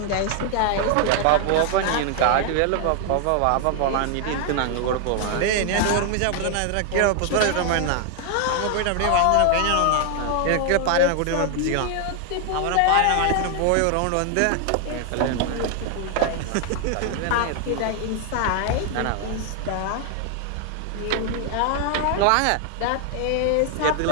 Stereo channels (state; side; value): different; both; correlation 0.00